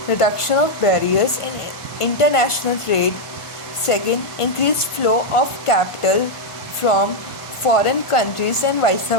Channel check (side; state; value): right; late; 1.5 ms